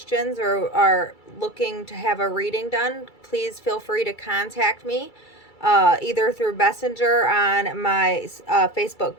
or are looking to have a reading done, please feel free to contact me. Either through Messenger on my Facebook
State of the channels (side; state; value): right; late; 2.3 ms